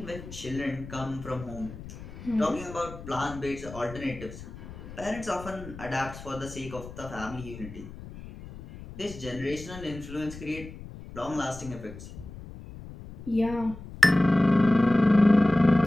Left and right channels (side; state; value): left; noise; rumble, 14 dB below the sound